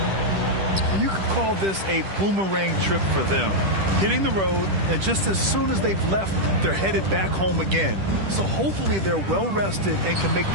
You could call this a boomerang trip for them. Hitting the road, and just as soon as they've left, they're headed back home again. So hopefully they're well rested and can make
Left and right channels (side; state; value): left; late; 10 ms